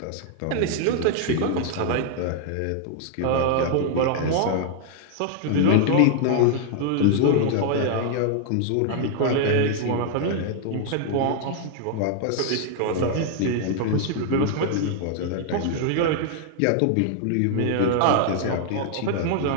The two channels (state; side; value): different; both; correlation 0.00